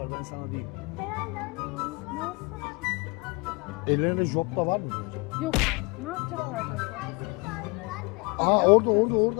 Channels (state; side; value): quieter; right; 28.5 dB